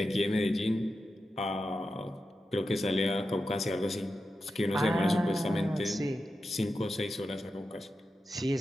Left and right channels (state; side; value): normal; both; correlation 0.90